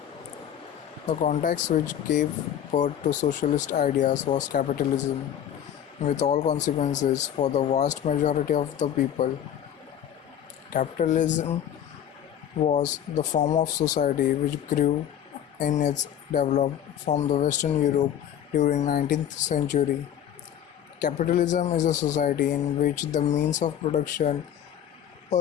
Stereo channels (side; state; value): right; quieter; 10.0 dB